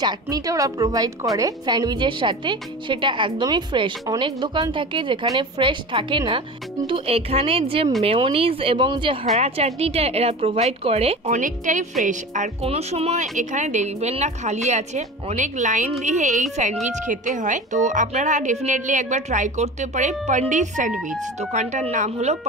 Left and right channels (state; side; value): normal; both; correlation 0.33